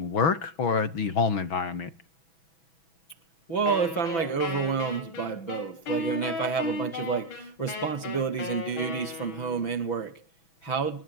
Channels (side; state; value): right; late; 6.0 ms